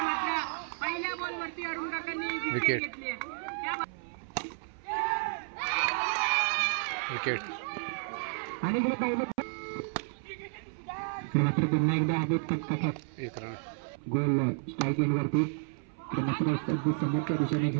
पहिल्या बॉल वरती अरुण काकांनी विकेट घेतली. विकेट आणि मात्र पुन्हा एकदा हवेत 1 रन गोल स्ट्राईक एंड वरती मात्र समोरच्या दिशेने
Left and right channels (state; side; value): silent; left; 57 dB below the other